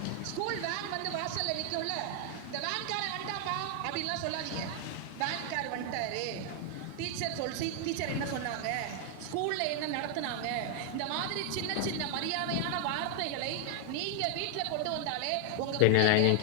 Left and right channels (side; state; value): both; different; correlation 0.00